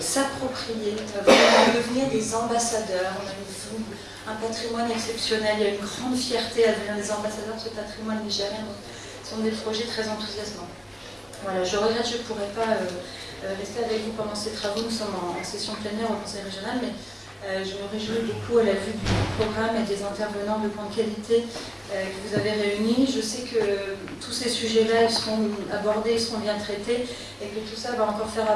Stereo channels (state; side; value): identical; both; correlation 1.00